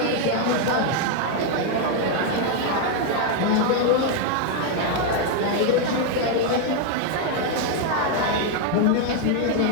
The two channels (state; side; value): different; both; correlation 0.01